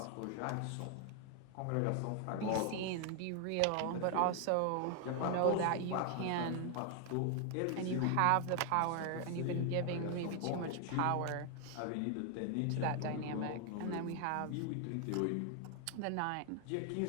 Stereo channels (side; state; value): both; different; correlation 0.00